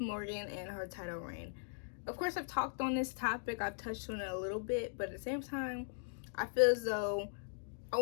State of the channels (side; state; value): right; silent; digital silence